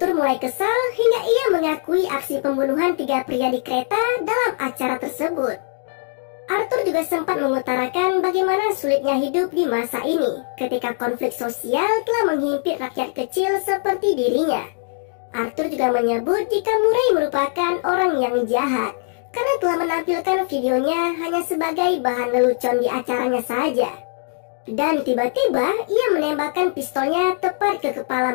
mulai kesal hingga ia mengakui aksi pembunuhan 3 pria di kereta dalam acara tersebut. Arthur juga sempat mengutarakan bagaimana sulitnya hidup di masa ini ketika konflik sosial telah menghimpit rakyat kecil seperti dirinya. Arthur juga menyebut jika Murray merupakan orang yang jahat karena telah menampilkan videonya hanya sebagai bahan lelucon di acaranya saja. Dan tiba-tiba ia menembakkan pistolnya tepat ke kepala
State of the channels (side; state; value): right; silent; 64 dB below the other